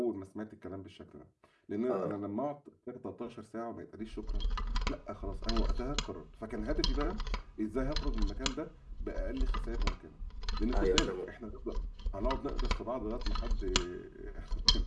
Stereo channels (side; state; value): both; identical; correlation 1.00